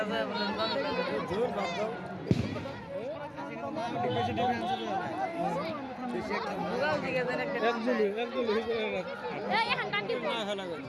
যায় জোর বাদ দাও বেশি ডিফারেন্স হবে না বেশি একটা বুঝাও দিকে দেন একটা একদম এই এখন টান দিব না হলা গো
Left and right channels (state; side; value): identical; both; correlation 1.00